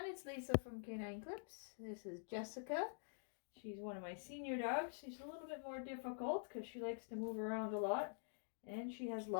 it's Lisa from Canine Clips. This is Jessica. She's one of my senior dogs. She's a little bit more difficult because she likes to move around a lot and she has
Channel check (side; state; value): right; silent; digital silence